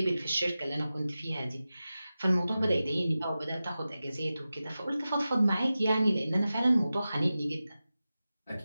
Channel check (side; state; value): both; inverted; correlation -0.94